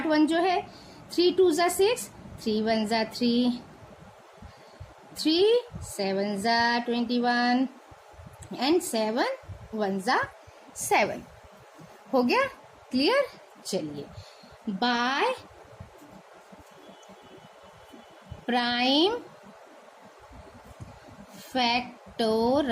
1 जो है। 3 2 ज़ा 6, 3 1 ज़ा 3, 3 7 ज़ा 21 एंड 7 1 ज़ा 7। हो गया क्लियर? चलिए, bye prime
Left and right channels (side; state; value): both; identical; correlation 1.00